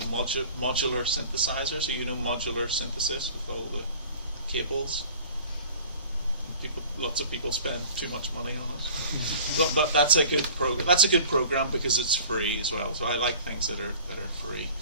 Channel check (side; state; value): both; inverted; correlation -0.45